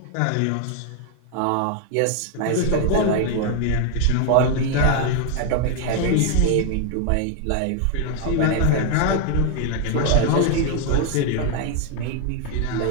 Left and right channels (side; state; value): both; different; correlation 0.01